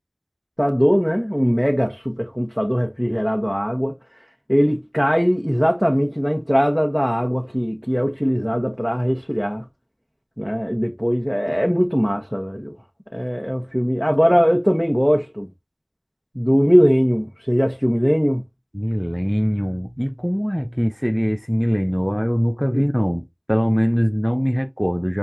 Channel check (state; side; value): identical; both; correlation 1.00